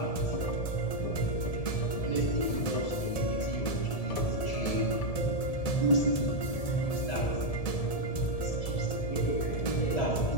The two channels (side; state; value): right; late; 1.7 ms